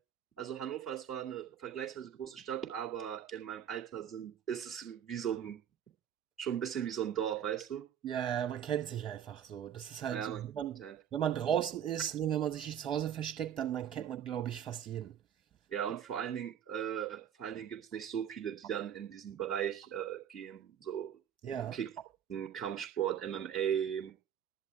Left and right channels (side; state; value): left; quieter; 9.4 dB